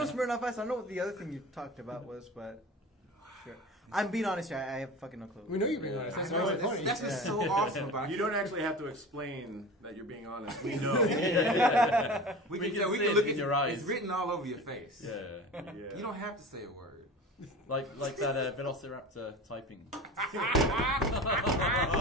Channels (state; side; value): normal; both; correlation 0.34